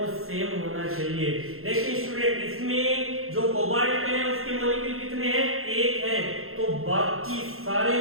सेम होना चाहिए। देखिए स्टूडेंट, इसमें जो कोबाल्ट है उसके मॉलिक्यूल कितने हैं? 1 हैं, तो बाकी सारे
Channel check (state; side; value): late; left; 0.62 ms